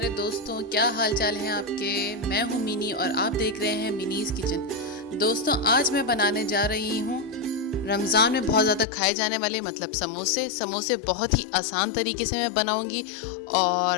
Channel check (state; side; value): drops out; right; at 8.8 s